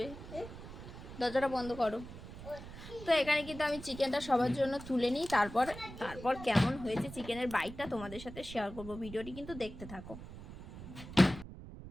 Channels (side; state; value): right; noise; rumble, 13 dB below the sound